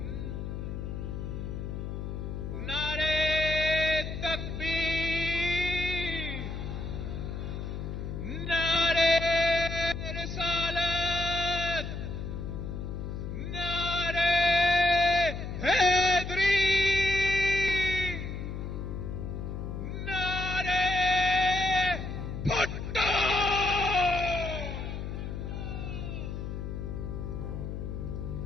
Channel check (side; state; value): left; noise; hum, 5 dB below the sound